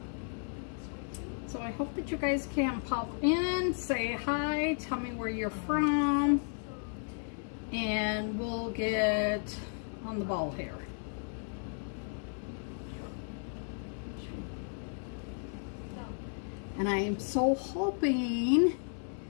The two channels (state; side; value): silent; right; 55 dB below the other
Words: So I hope that you guys can pop in, say hi, tell me where you're from, and we'll get on the ball here. And I am so hoping